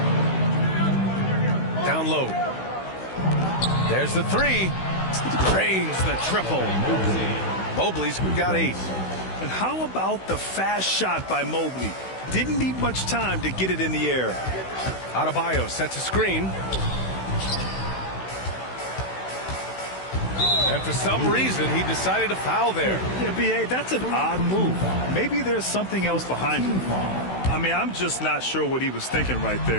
Down low. There's the 3. Drains the triple. Mobley's got 8. And how about the fast shot by Mobley? Didn't need much time to get it in the air. Adebayo sets a screen. And for some reason, he decided to foul there. Yeah, B.A., that's an odd move. Maybe there's something else behind it. I mean, I'm just not sure what he was thinking right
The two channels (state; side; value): late; right; 16 ms